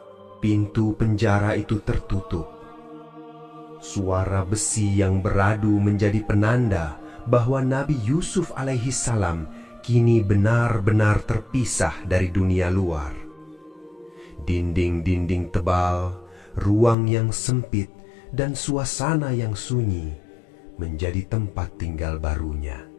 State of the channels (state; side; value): drops out; right; at 16.9 s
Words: Pintu penjara itu tertutup. Suara besi yang beradu menjadi penanda bahwa Nabi Yusuf alaihi salam kini benar-benar terpisah dari dunia luar. Dinding-dinding tebal, ruang yang sempit, dan suasana yang sunyi menjadi tempat tinggal barunya.